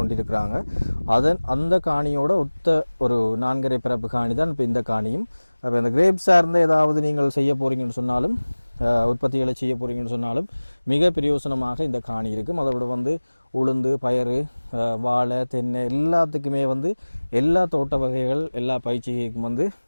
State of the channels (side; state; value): both; inverted; correlation -1.00